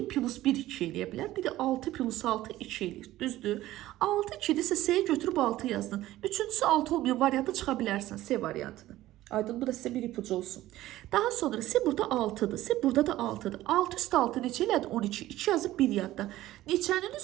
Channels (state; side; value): quieter; left; 15.4 dB